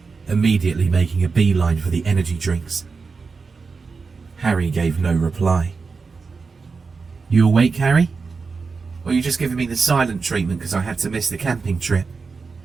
immediately making a beeline for the energy drinks. Harry gave no reply. "You awake, Harry? Or are you just giving me the silent treatment because I had to miss the camping trip?"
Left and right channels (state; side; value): quieter; left; 4.7 dB